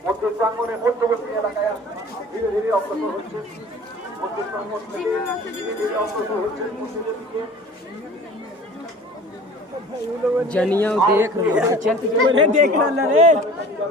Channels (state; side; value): normal; both; correlation 0.44